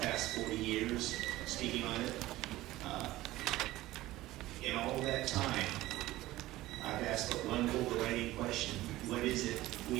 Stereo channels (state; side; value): quieter; left; 16.8 dB